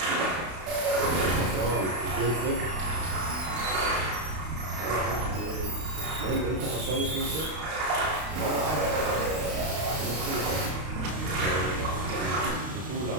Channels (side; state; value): left; late; 32 ms